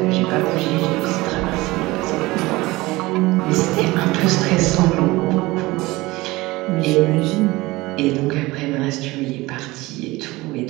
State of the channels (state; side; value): quieter; left; 20.5 dB